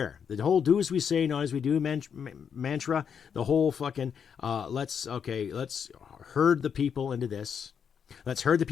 The whole do as we say, not as we do mantra, the whole fucking, let's herd the people into this. Let's herd the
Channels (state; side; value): quieter; right; 7.3 dB